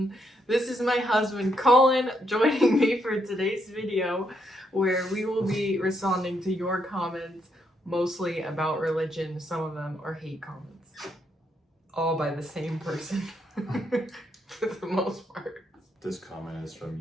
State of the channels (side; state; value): both; normal; correlation 0.77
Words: This is my husband, Colin, joining me for today's video, where we will be responding to your comments, mostly about religion. Some of them are hate comments. All by the same person, for the most part. This comment is